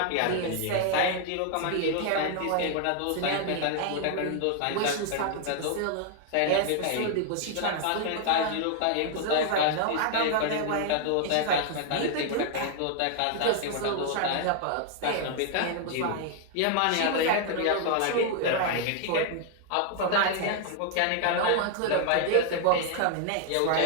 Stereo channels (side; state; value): both; different; correlation 0.00